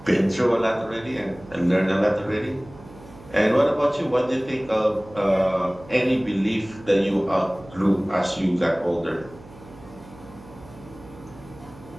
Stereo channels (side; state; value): right; noise; hum, 20 dB below the sound